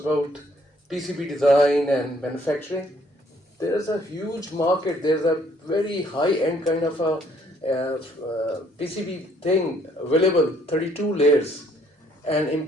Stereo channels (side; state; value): both; normal; correlation 0.64